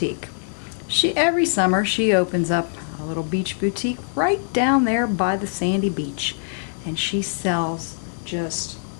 Every summer she opens up a little beach boutique right down there by the sandy beach. And she sells just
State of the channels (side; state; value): right; silent; digital silence